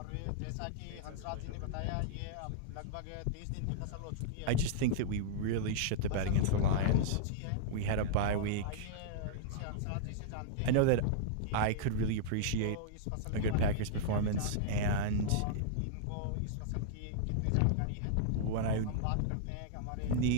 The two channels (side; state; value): both; different; correlation -0.02